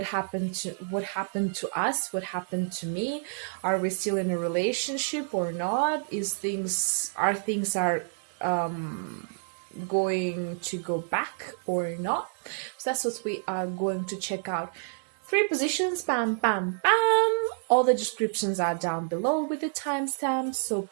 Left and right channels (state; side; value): silent; left; digital silence